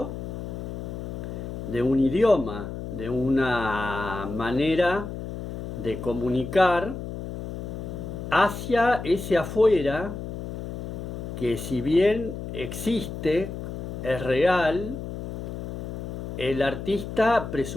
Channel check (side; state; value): left; noise; hum, 7 dB below the sound